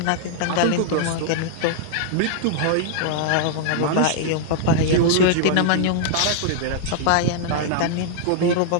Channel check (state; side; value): different; both; correlation -0.01